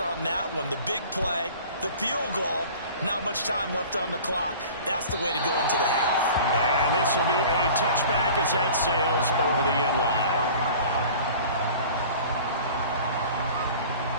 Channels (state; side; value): inverted; both; correlation -0.43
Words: that one? The big play, the field goal, not much time left on the clock. That's the way to go into the half. And this will be a touchback as that sails over the end line.